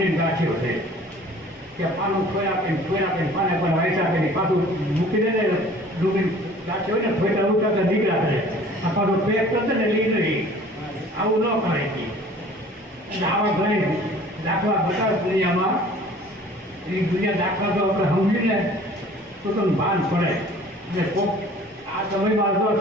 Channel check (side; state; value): both; normal; correlation 0.49